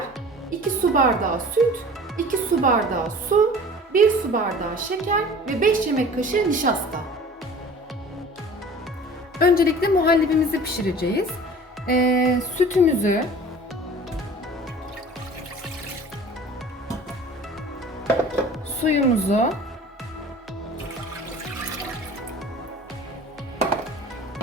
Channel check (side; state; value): both; normal; correlation 0.43